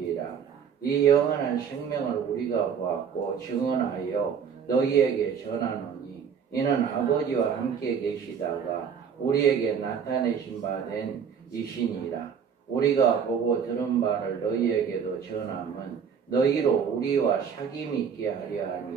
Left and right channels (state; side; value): quieter; left; 7.1 dB